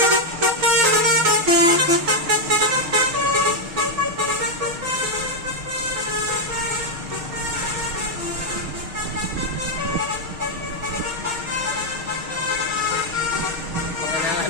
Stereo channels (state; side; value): late; left; 6.5 ms